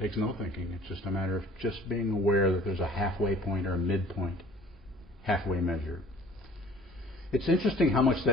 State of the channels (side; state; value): both; normal; correlation 0.51